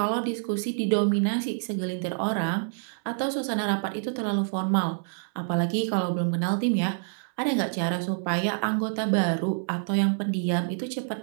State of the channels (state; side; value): silent; left; 60 dB below the other